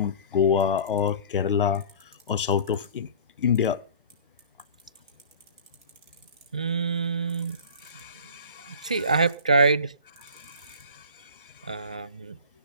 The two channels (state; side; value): inverted; both; correlation -0.40